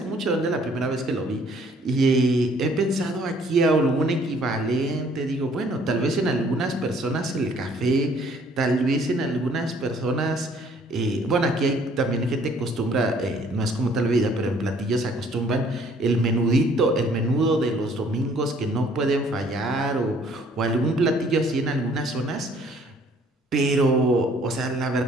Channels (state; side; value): normal; both; correlation 0.60